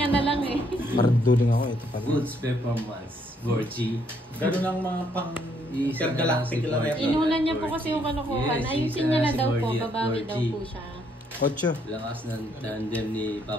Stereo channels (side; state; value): both; normal; correlation 0.70